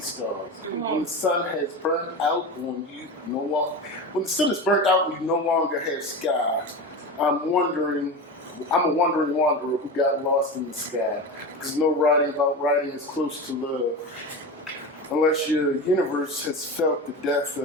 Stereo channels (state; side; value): normal; both; correlation 0.25